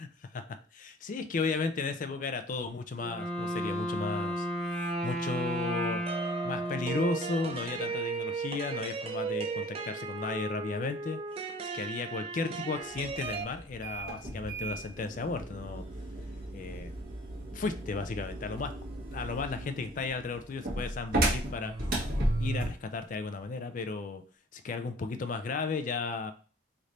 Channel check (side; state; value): both; normal; correlation 0.49